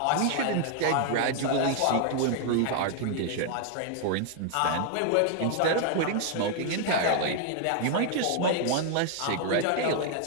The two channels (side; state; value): both; different; correlation 0.00